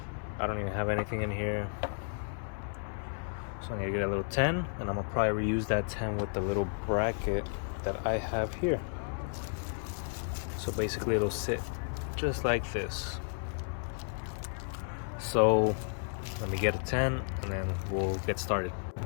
I don't even have anything in here, so I'm gonna get a little 10, and I'm gonna probably reuse that 10 with the little bracket that I have here. So basically it'll sit just like this. So let me get a 10 and then we'll get started.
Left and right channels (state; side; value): silent; right; 56 dB below the other